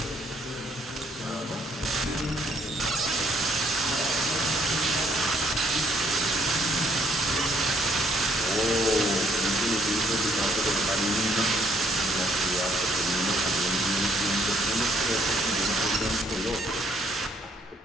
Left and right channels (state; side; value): normal; both; correlation 0.67